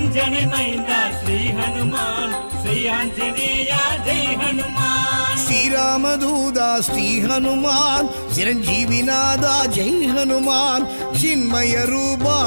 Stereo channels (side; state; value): both; inverted; correlation -1.00